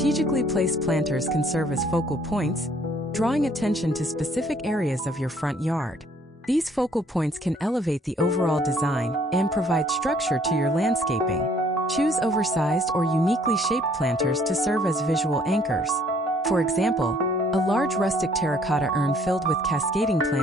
placed planters can serve as focal points, drawing attention to specific areas of your front yard. These focal points can elevate the overall design and provide structure to your landscaping. Choose oversized or uniquely shaped planters to serve as visual anchors. For example, a large rustic terracotta urn filled with cascading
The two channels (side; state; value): both; normal; correlation 0.61